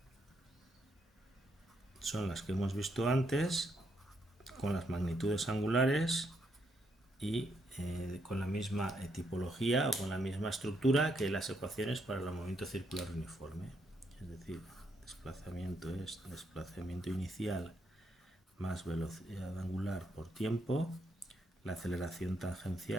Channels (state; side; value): normal; both; correlation 0.76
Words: son las que hemos visto antes, con las magnitudes angulares y con la misma tipología o con la misma estructura que las ecuaciones para el movimiento circular uniforme. Es decir, desplazamiento es desplazamiento inicial más velocidad angular por tiempo. La aceleración